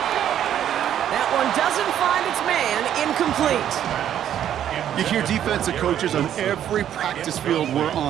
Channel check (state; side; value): quieter; left; 10.4 dB